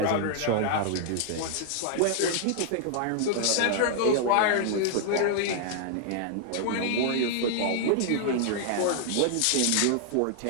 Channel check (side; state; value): both; different; correlation -0.01